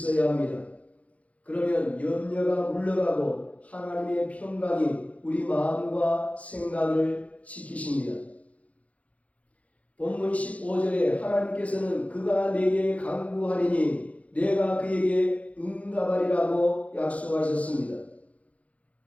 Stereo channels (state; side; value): late; right; 0.066 ms